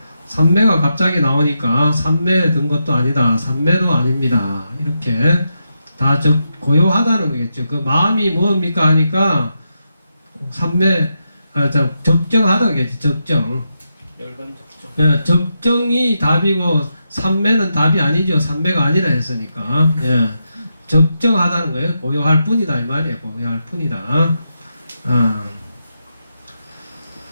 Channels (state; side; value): inverted; both; correlation -0.85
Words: 삼매가 갑자기 나오니까 삼매 든 것도 아니다. 삼매도 아닙니다. 이렇게 다 고요하다는 거겠죠. 그 마음이 뭡니까 하니까 삼매 적정하다겠지. 적정. 예, 적정이 답이고 삼매는 답이 아니죠. 삼매가 아니라 했으니까. 예. 적정하다는 거예요. 고요할 뿐이다 이 말이에요. 고요할 뿐이다.